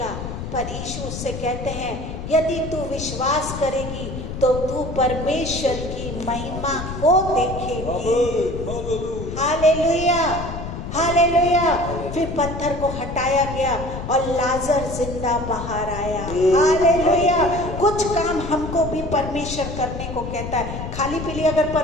पर यीशु उससे कहते हैं, यदि तू विश्वास करेगी तो तू परमेश्वर की महिमा को देखेगी। Hallelujah, hallelujah. फिर पत्थर को हटाया गया और लाजर जिंदा बाहर आया। हालेलुया। कुछ काम हमको भी परमेश्वर करने को कहता है। खाली पीली अगर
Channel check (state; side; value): noise; left; rumble, 7 dB below the sound